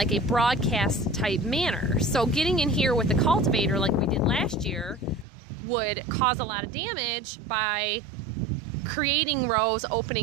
a broadcast type manner. So getting in here with the cultivator like we did last year would cause a lot of damage by creating rows,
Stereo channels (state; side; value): drops out; left; at 5.2 s